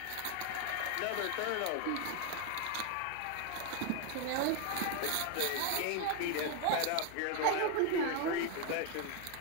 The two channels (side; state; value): both; different; correlation 0.01